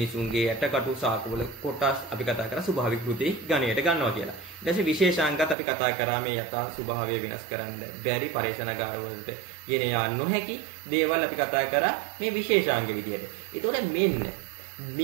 යටකටු, සාකවල කොටස් අපි කතා කරා ස්වභාවික කෘති ගණයට ගන්නවා කියලා. ඊට පස්සේ විශේෂාංගත් අපි කතා කරා මේ යථා ස්වභාවය වෙනස් කරන්න බැරි පරේෂණාගාර වලට ගෙන යා නොහැකි දේවල් අපි කතා කරා මේ විශේෂාංග විදියට. ඒතකොට මෙන්න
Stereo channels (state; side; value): drops out; left; at 5.6 s